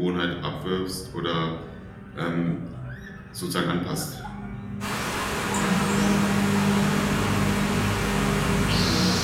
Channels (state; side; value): identical; both; correlation 1.00